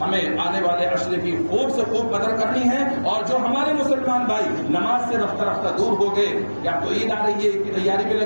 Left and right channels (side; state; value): both; inverted; correlation -1.00